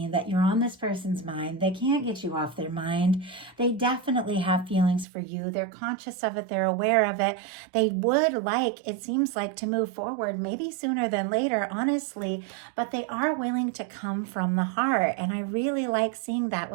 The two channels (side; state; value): left; drops out; at 5.1 s